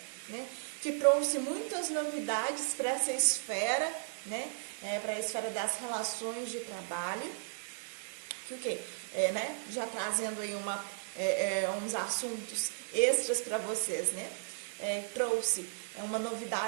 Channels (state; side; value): silent; left; digital silence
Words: né? Que trouxe muitas novidades para essa esfera, né? Para a esfera das relações de trabalho, que o quê? Né? Já trazendo aí uns assuntos extras para vocês, né? Trouxe uma